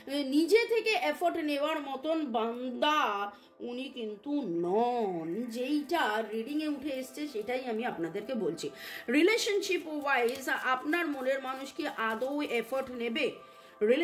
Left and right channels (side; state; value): both; identical; correlation 1.00